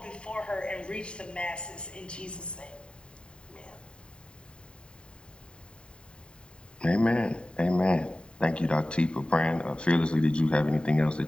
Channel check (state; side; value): late; right; 0.052 ms